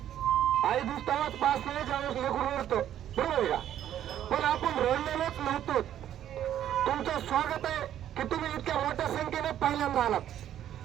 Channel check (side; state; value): left; quieter; 11.1 dB